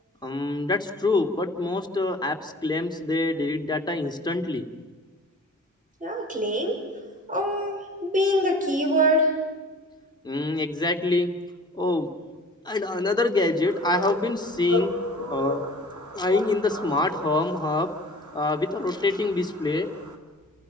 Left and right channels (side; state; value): both; normal; correlation 0.44